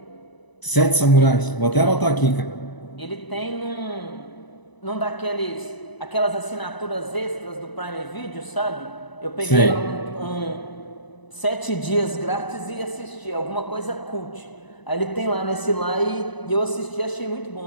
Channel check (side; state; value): right; late; 1.0 ms